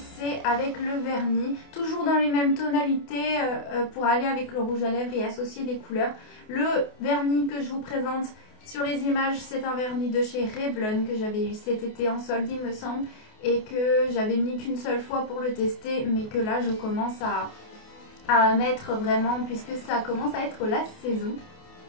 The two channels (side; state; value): right; late; 28 ms